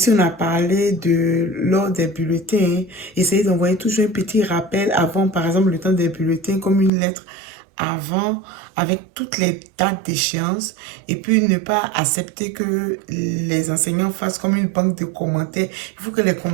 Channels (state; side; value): drops out; left; at 6.9 s